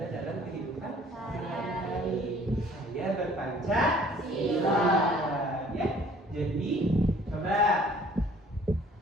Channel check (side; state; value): both; normal; correlation 0.55